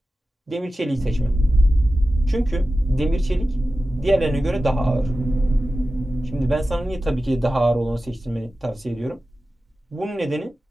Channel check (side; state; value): both; normal; correlation 0.94